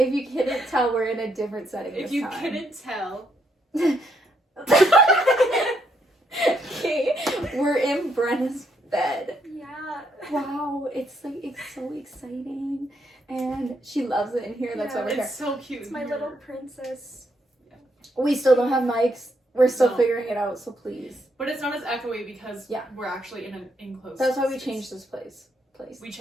you couldn't tell, we're in a different setting If this you time. couldn't tell. Okay, we're in Brenna's bed. Yeah. Wow, it's so exciting. And she loves it in here, that's why we're here. It's so cute. It's my little princess. We still don't have mics. We're still No. figuring it out, so please. But it's not as echoey because Yeah. we're actually in an enclosed That's why we space. changed this place. We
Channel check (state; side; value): normal; both; correlation 0.75